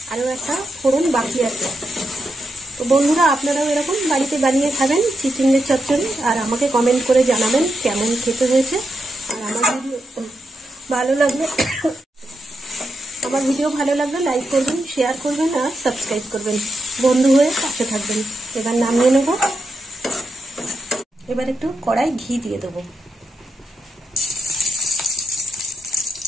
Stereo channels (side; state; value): both; normal; correlation 0.85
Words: আরও একটা ফোড়ন বাকি আছে। তো বন্ধুরা, আপনারাও এরকম বাড়িতে বানিয়ে খাবেন চিচিঙ্গের চচ্চড়ি, আর আমাকে কমেন্ট করে জানাবেন কেমন খেতে হয়েছে। আর আমার ভিডিও ভালো লাগলে লাইক করবেন, শেয়ার করবেন আর সাবস্ক্রাইব করবেন। বন্ধু হয়ে পাশে থাকবেন। এবার নামিয়ে নেব। এবার একটু কড়াই ঘি দিয়ে দেবো।